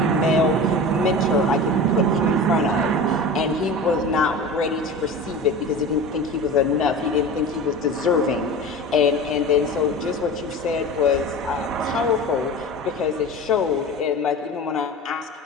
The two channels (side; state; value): both; normal; correlation 0.32